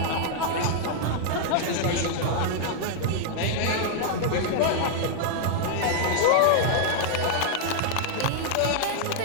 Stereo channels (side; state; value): both; different; correlation -0.01